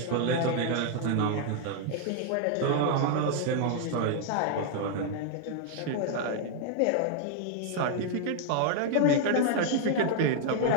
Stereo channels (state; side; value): different; both; correlation 0.00